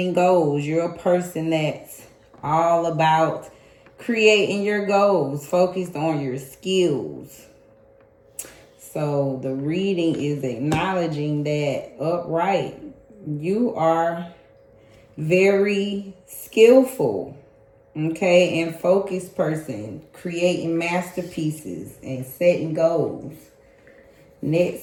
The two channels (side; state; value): both; identical; correlation 1.00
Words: goals. You're a person that's all about creating your goals, focused on your skills. So the reading is acknowledging that upright, you are very skillful, okay, and focused person, creating masterpieces and setting goals.